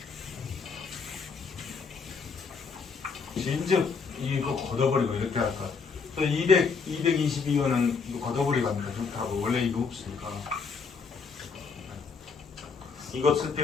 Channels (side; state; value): right; quieter; 5.2 dB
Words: 진즉 이거 걷어버리고 이렇게 할까? 또 222원은 이거 걷어버리고 하는 게 좋다고. 원래 이거 없으니까. 이거 쓸